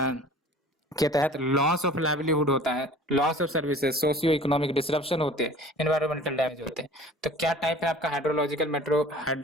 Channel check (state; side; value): normal; both; correlation 0.46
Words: के तहत लॉस ऑफ लाइवलीहुड होता है, loss of services, socio economic disruption होते हैं, एनवायरमेंटल डैमेज होते हैं। तो क्या टाइप है आपका